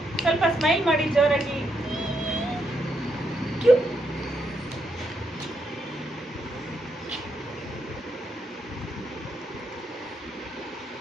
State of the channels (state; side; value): normal; both; correlation 0.79